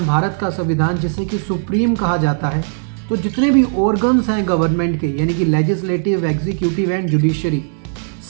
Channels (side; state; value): left; silent; 68 dB below the other